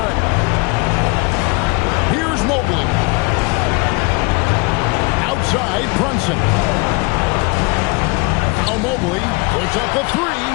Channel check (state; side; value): quieter; right; 27.8 dB